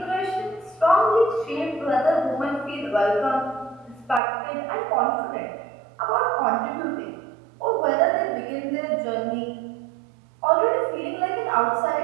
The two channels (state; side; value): drops out; left; at 4.2 s